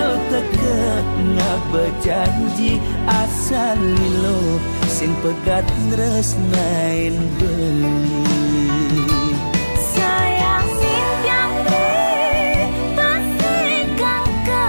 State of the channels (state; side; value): inverted; both; correlation -1.00